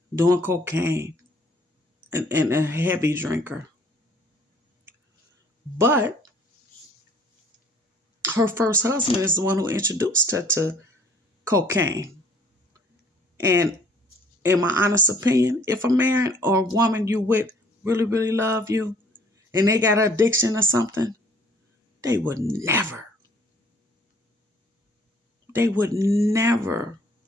doing cocaine, and a heavy drinker. But her first husband is the one who introduced her to cocaine. And in my honest opinion, if a man or a woman you with really, really love you and they got an addiction or something, they would never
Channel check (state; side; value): normal; both; correlation 0.57